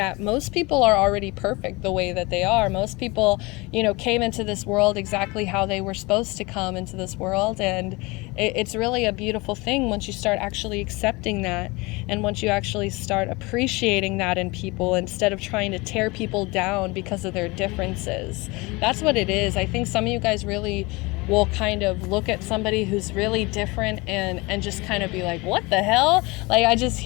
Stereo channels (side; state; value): right; quieter; 24.6 dB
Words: most people are already perfect the way that they are. Most people, you know, came into this world exactly how they were supposed to come into this world. And it's really a beautiful thing once you start actually accepting that, and once you actually start appreciating that in people instead of trying to tear people down because of their differences. That's what it is. I think some of you guys really will kind of look at somebody who's really different and just kind of be like, what the hell? Like I just